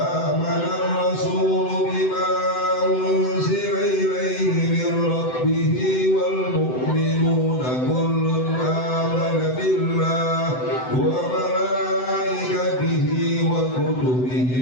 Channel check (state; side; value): late; right; 7.9 ms